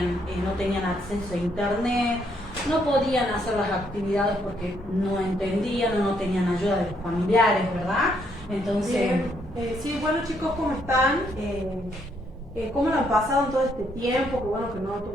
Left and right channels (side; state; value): both; normal; correlation 0.72